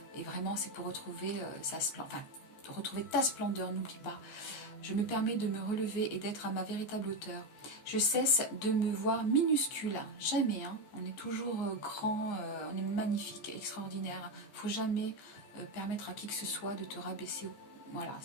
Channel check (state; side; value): late; right; 14 ms